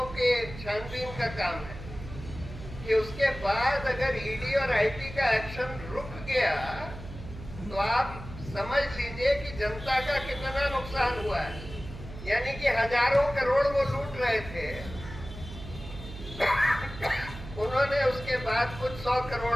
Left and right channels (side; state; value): right; noise; hum, 12 dB below the sound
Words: के छानबीन का काम है कि उसके बाद अगर ईडी और आईटी का एक्शन रुक गया, तो आप समझ लीजिए कि जनता का कितना नुकसान हुआ है। यानी कि हजारों करोड़ वो लूट रहे थे, उन्होंने उसके बाद कुछ 100